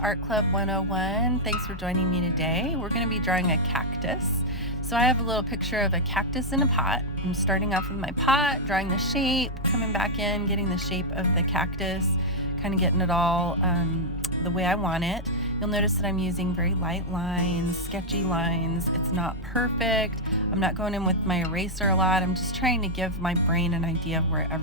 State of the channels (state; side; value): normal; both; correlation -0.04